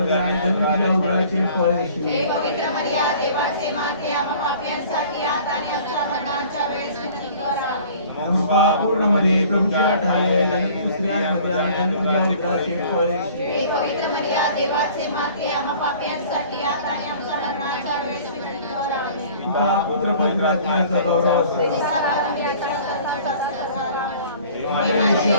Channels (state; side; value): inverted; both; correlation -0.49